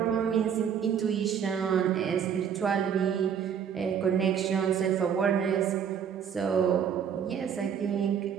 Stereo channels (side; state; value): left; quieter; 8.0 dB